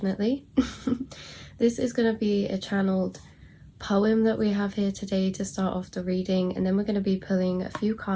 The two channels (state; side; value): identical; both; correlation 1.00